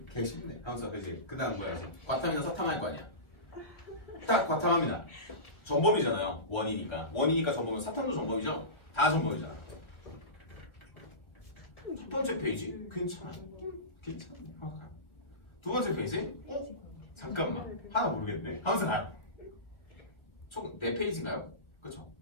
개 쉽네. 하면서 그지. 그다음 뭐야? 과탐이나 서탐할 거 아니야. 딱 과탐합니다. 전범이잖아요. 원이니까 전범은 사탐도 전범이죠. 다 전범이잖아. 첫 번째 페이지 괜찮아요. 괜찮네. 두 번째 페이지 잠깐만 하나 모르겠네. 하면서 가요. 총 4페이지인가요? 그렇죠?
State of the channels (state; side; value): late; right; 1.6 ms